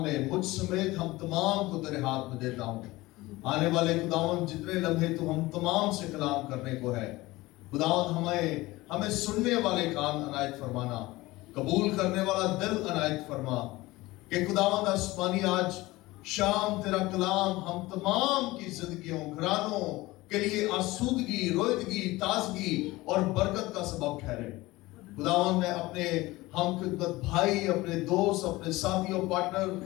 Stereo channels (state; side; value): quieter; right; 19.8 dB